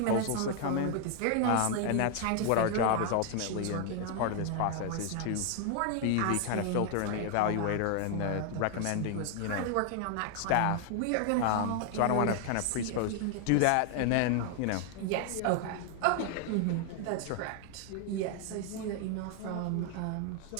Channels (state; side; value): different; both; correlation 0.00